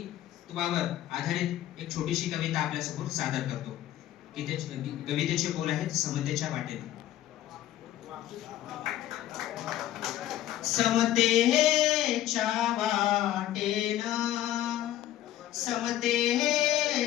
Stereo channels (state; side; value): quieter; right; 13.0 dB